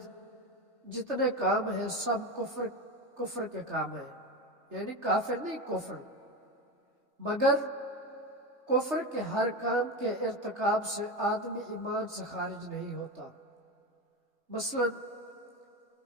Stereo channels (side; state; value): left; late; 3.3 ms